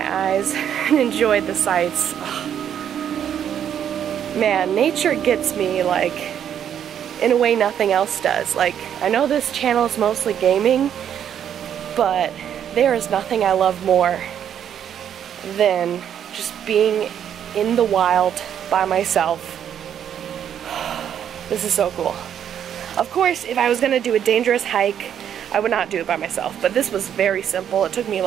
eyes and enjoyed the sights. Oh. Man, nature gets me, like, in a way nothing else does. Like, I know this channel is mostly gaming, but there is nothing I love more than just being in the wild by myself. This is so cool. Of course, if I was gonna do a dangerous hike, I would not do it by myself, but this was very simple. It took me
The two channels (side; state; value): left; quieter; 9.3 dB